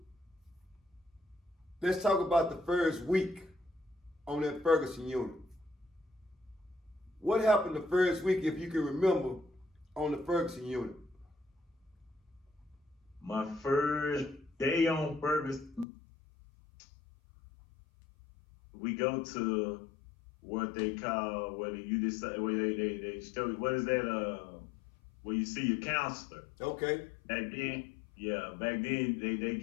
let's talk about the first week on that Ferguson unit. What happened the first week, if you can remember, on the Ferguson unit? My first day on Ferguson, we go to what they call, where you decide, where they show you, what is that, where you see your counselor. Okay. Back then, they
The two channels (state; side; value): drops out; right; at 15.9 s